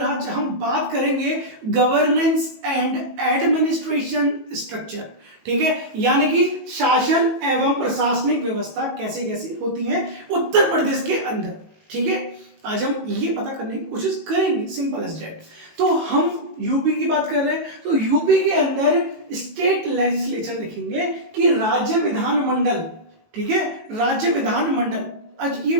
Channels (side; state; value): left; late; 18 ms